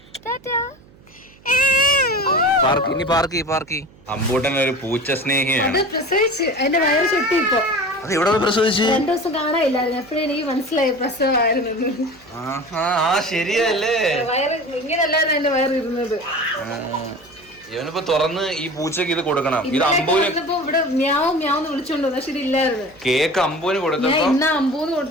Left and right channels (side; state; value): right; noise; hum, 26 dB below the sound